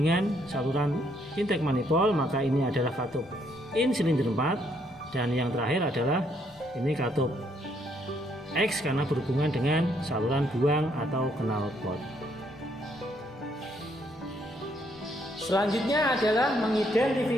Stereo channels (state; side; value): normal; both; correlation 0.71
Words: saluran intake manifold, maka ini adalah katup in silinder 4. Dan yang terakhir adalah ini katup X karena berhubungan dengan saluran buang atau knalpot. Selanjutnya adalah